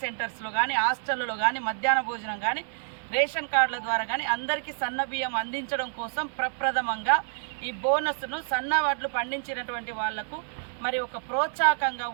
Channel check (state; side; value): silent; left; 59 dB below the other